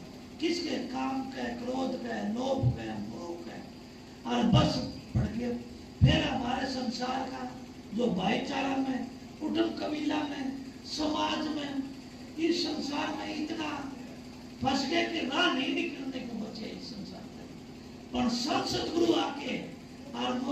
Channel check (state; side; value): identical; both; correlation 1.00